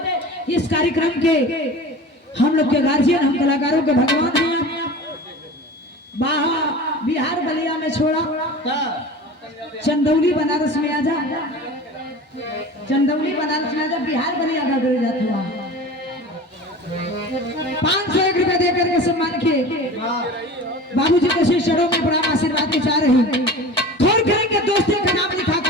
इस कार्यक्रम के हम लोग के गार्जियन हम कलाकारों के भगवान हैं बाहर बिहार बलिया में छोड़ा चंदौली बनारस में आजा चंदौली बनारस में आजा बिहार बलिया का डर जाता हुआ 501 रुपए देकर के सम्मान किए बाबूजी के शिष्यों में बड़ा आशीर्वाद के चाह रही थोड़ करेंगे दोस्ती का नाम लिखा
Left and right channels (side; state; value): both; normal; correlation 0.36